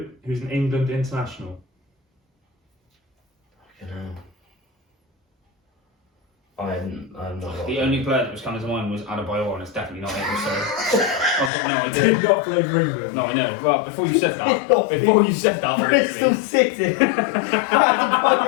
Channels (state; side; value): drops out; right; at 11.5 s